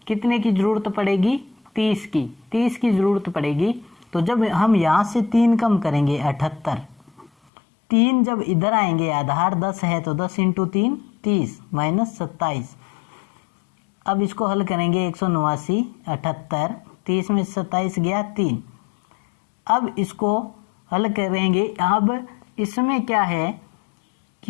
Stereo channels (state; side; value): drops out; right; at 7.3 s